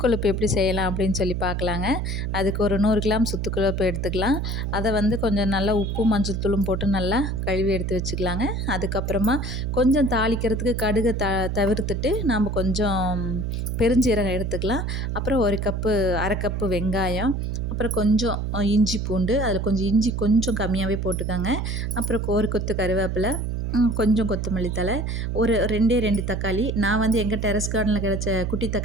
கொழுப்பு எப்படி செய்யலாம் அப்படின்னு சொல்லி பார்க்கலாங்க. அதுக்கு ஒரு 100 கிராம் சுத்து கொழுப்பு எடுத்துக்கலாம். அதை வந்து கொஞ்சம் நல்லா உப்பு மஞ்சள் தூளும் போட்டு நல்லா கழுவி எடுத்து வச்சுக்கலாங்க. அதுக்கப்புறமா கொஞ்சம் தாளிக்கிறதுக்கு கடுகை தவிர்த்துட்டு நம்ம கொஞ்சம் பெருஞ்சீரகம் எடுத்துக்கலாம். அப்புறம் அரை கப்பு வெங்காயம், அப்புறம் கொஞ்சம் இஞ்சி பூண்டு, அதில் கொஞ்சம் இஞ்சி கொஞ்சம் கம்மியாகவே போட்டுக்கோங்க. அப்புறம் ஒரு கொத்து கருவேப்பிலை, கொஞ்சம் கொத்தமல்லி தழை, ஒரு 2 தக்காளி. நான் வந்து எங்கள் டெரஸ் கார்டனில் கிடச்ச குட்டி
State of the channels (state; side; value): noise; right; hum, 1 dB below the sound